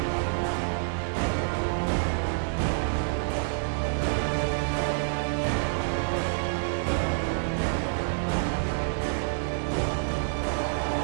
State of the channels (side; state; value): left; silent; 60 dB below the other